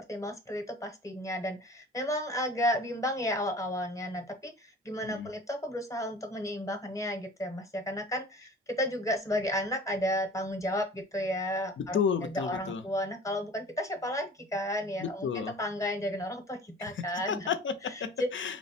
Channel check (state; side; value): normal; both; correlation 0.43